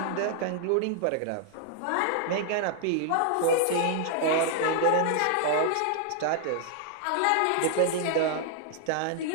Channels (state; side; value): different; both; correlation 0.00